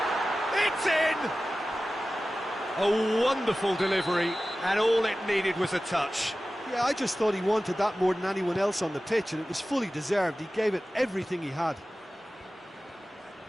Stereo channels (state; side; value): normal; both; correlation 0.96